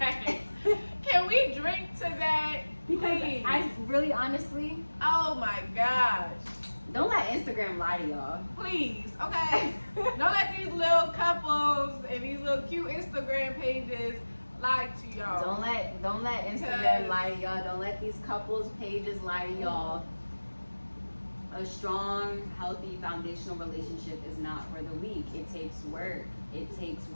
Can we drink to that? Because Please. I really, honestly, Oh my gosh. don't let Instagram lie to y'all. Please, okay? Don't let these little couples and these little cute Instagram pages lie to y'all. Don't let Instagram lie to y'all. Don't let these couples pages lie to y'all. A strong, healthy, foundational relationship is not for the weak. It takes work. It takes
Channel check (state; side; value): inverted; both; correlation -1.00